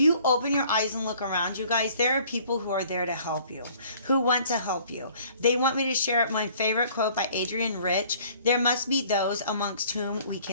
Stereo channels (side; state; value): both; inverted; correlation -0.55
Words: open your eyes and look around you guys, there are people who are there to help you, who want to help you. They want me to share my favorite quote by Adrienne Rich. There must be those amongst whom we